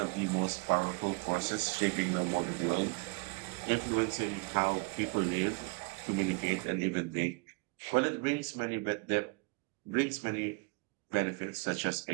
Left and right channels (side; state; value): left; quieter; 29.1 dB